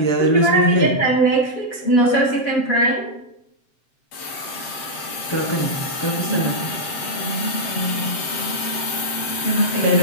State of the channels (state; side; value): late; right; 7.6 ms